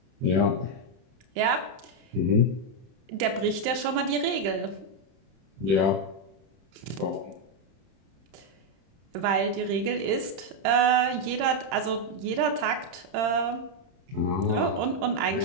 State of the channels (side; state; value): left; late; 31 ms